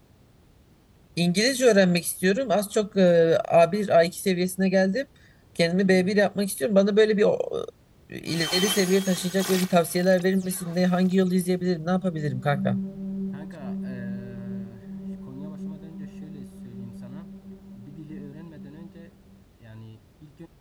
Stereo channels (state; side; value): identical; both; correlation 1.00